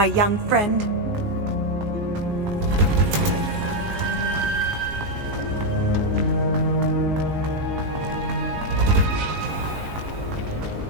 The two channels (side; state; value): left; late; 19 ms